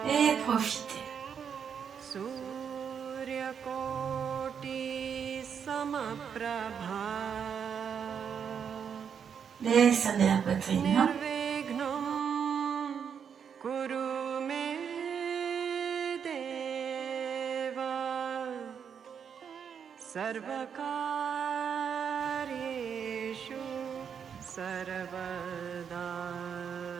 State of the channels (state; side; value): quieter; left; 7.4 dB